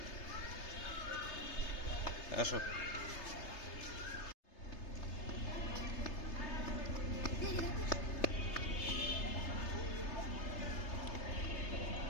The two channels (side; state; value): right; late; 3.3 ms